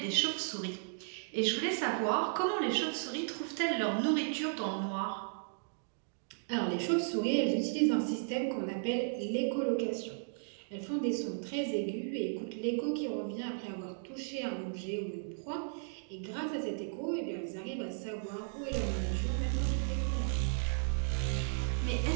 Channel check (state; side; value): silent; left; digital silence